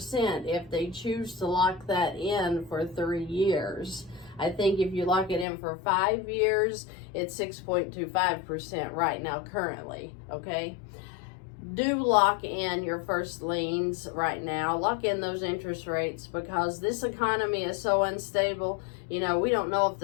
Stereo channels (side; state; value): right; drops out; at 5.5 s